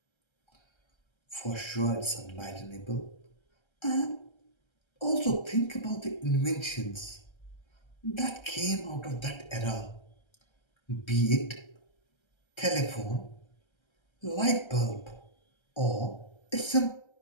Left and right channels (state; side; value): late; right; 1.3 ms